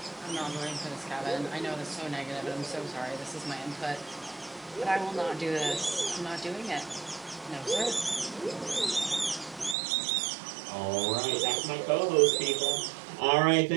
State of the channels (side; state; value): left; drops out; at 9.8 s